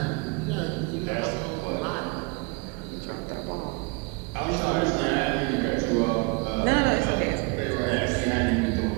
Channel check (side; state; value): left; quieter; 28.8 dB